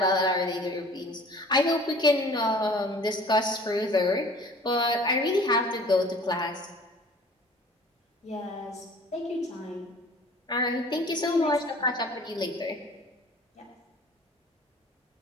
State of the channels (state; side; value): normal; both; correlation 0.48